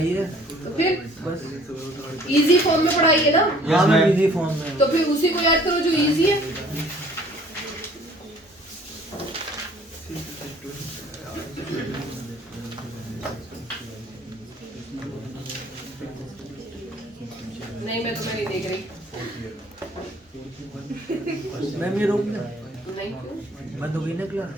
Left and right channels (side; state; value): both; normal; correlation 0.55